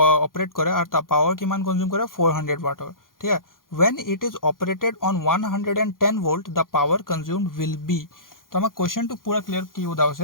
অপাৰেট কৰে আৰু তা পাৱাৰ কিমান কনজিউম কৰে 400 ওয়াটৰ ঠিক আছে when it is operated on 110 volt the power consumed will be তো আমাক কোৱেশ্চনটো পুৰা ক্লিয়াৰ কি উদা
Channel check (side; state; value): right; late; 0.91 ms